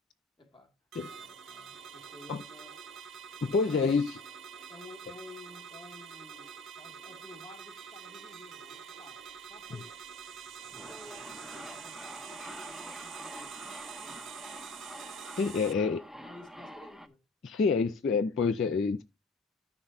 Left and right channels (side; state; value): right; quieter; 3.6 dB